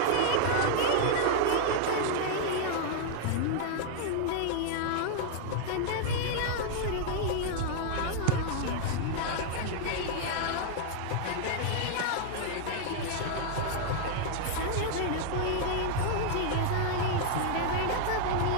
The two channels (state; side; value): different; both; correlation -0.01